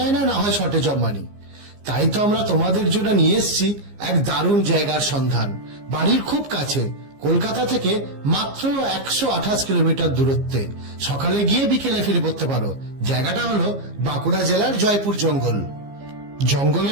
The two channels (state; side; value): late; left; 15 ms